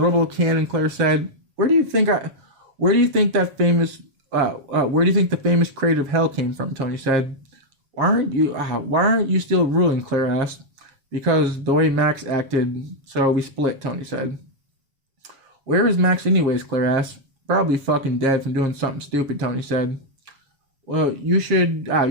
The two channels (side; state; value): left; late; 7.2 ms